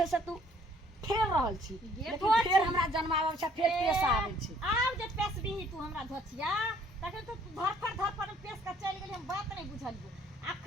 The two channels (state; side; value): normal; both; correlation 0.61